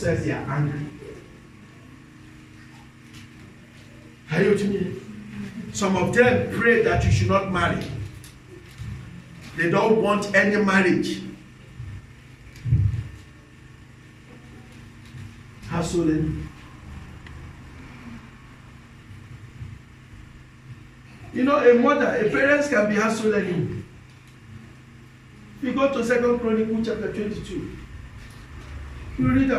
they are angry. Are you with me? Some of them pray that you should not marry. They don't want any marriage. Household enemy. You know, a parent can be household enemy. If you go to 2 Chronicles chapter 22, you read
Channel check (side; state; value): both; identical; correlation 1.00